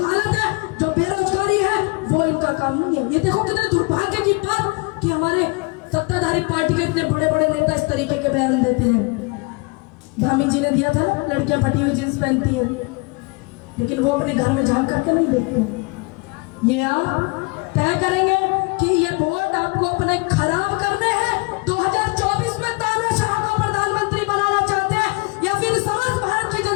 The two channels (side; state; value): right; quieter; 29.0 dB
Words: है, जो बेरोजगारी है, वो इनका काम नहीं है। ये देखो कितने दुर्भाग्य की बात कि हमारे सत्ताधारी पार्टी के इतने बड़े बड़े नेता इस तरीके के बयान देते हैं। धामी जी ने दिया था ना, लड़कियां फटी हुई जींस पहनती हैं, लेकिन वो अपने घर में झांक करके नहीं देखते। ये आप तय करेंगे कि ये वोट आपको अपने खराब करने हैं, 2024 में तानाशाह को प्रधानमंत्री बनाना चाहते हैं, या फिर समस्त भारत की